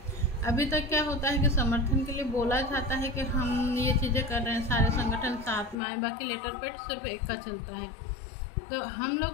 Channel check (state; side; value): drops out; right; at 5.8 s